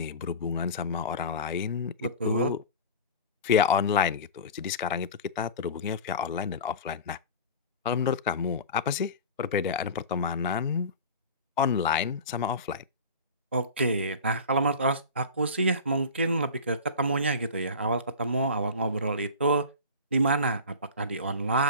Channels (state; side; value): inverted; both; correlation -0.32